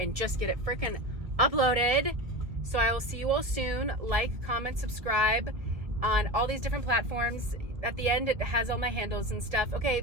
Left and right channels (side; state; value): left; late; 1.5 ms